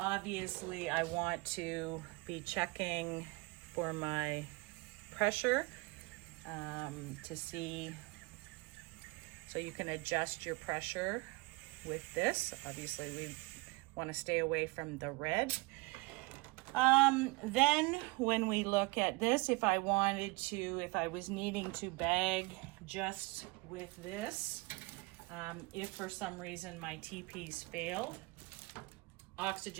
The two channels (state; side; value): quieter; left; 24.9 dB